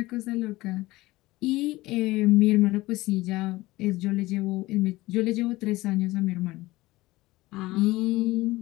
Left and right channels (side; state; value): right; quieter; 19.1 dB